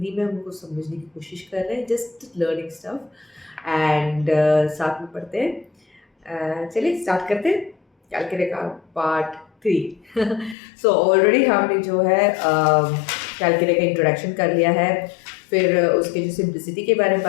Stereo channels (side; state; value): right; drops out; at 10.6 s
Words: में हम उनको समझने की कोशिश कर रहे हैं, जस्ट लर्निंग स्टफ एंड साथ में पढ़ते हैं। चलिए स्टार्ट करते हैं कैलकुलेटर का पार्ट 3। सो ऑलरेडी हमने जो है कैलकुलेटर का इंट्रोडक्शन कर लिया है, फिर उसके जो सिंप्लिसिटी के बारे में